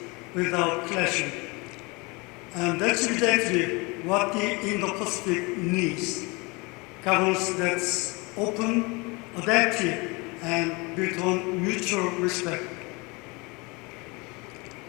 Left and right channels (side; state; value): right; quieter; 26.9 dB